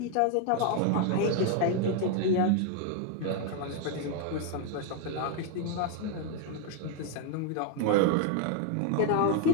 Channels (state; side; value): different; both; correlation 0.01